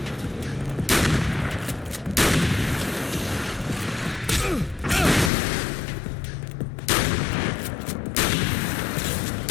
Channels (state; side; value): drops out; right; at 5.3 s